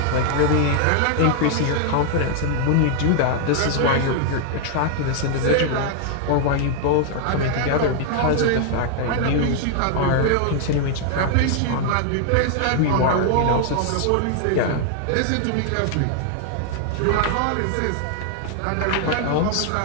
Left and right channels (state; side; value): different; both; correlation 0.00